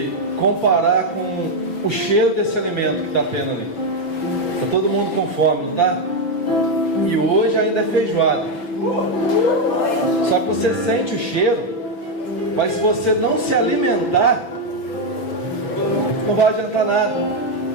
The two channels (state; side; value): late; right; 6.4 ms